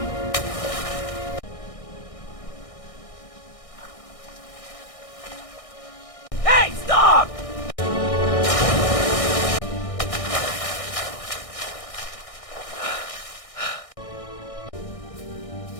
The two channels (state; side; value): late; right; 1.6 ms